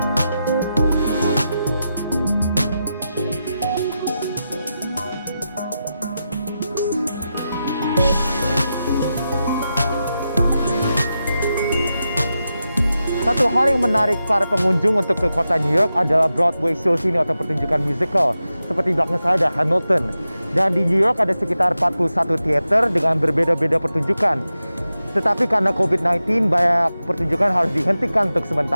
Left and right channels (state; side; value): inverted; both; correlation -0.90